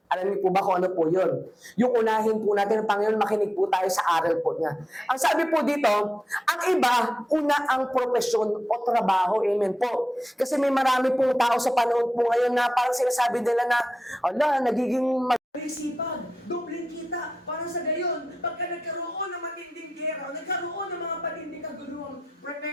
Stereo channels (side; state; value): both; normal; correlation 0.91